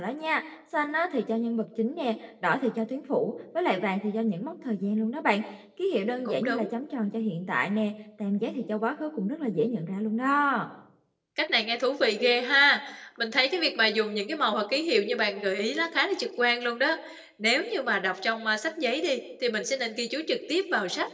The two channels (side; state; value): both; identical; correlation 1.00